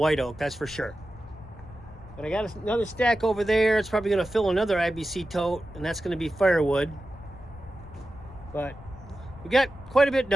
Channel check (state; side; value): noise; left; rumble, 18 dB below the sound